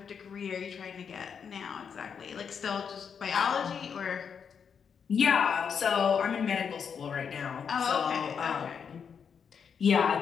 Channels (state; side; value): quieter; right; 6.8 dB